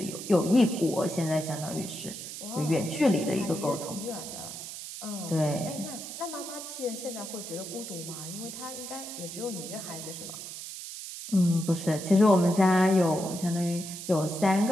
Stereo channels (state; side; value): noise; right; hiss, 9 dB below the sound